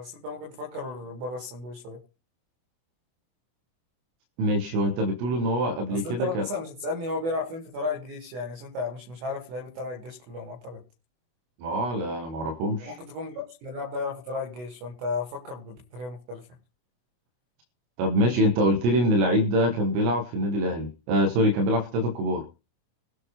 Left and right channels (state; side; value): late; left; 24 ms